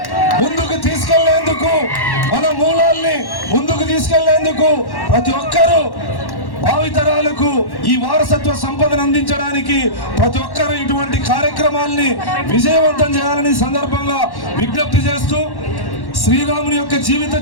ముందుకు తీసుకెళ్లేందుకు, మన మూలాల్ని ముందుకు తీసుకెళ్లేందుకు ప్రతి ఒక్కరూ భావితరాలకు ఈ వారసత్వ సంపదను అందించడానికి ప్రతి ఒక్కరూ ఇటువంటి కార్యక్రమాల్ని విజయవంతం చేయాలని సందర్భంగా విజ్ఞప్తి చేస్తూ, శ్రీరాముని యొక్క జీవిత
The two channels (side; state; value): right; late; 1.1 ms